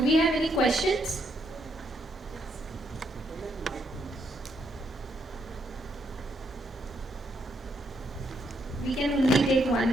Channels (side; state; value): both; normal; correlation 0.76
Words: we have any questions? We can only take